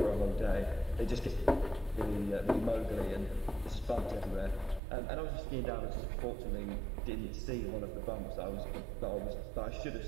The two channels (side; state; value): left; drops out; at 4.8 s